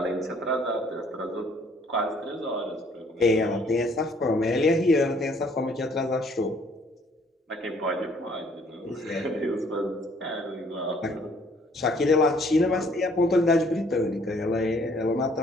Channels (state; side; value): normal; both; correlation 0.61